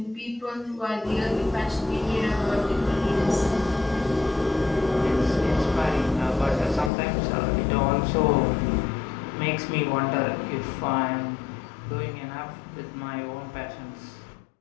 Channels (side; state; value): right; drops out; at 6.9 s